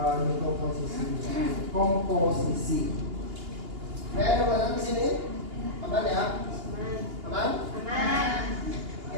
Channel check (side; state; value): left; late; 2.8 ms